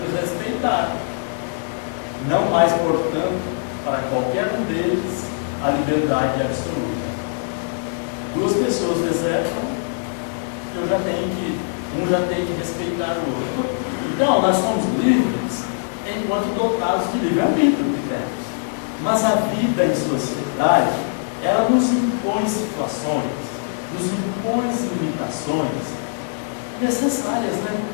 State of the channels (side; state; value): right; silent; digital silence